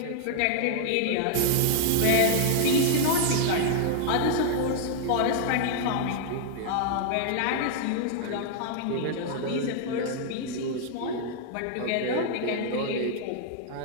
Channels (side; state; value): both; different; correlation -0.01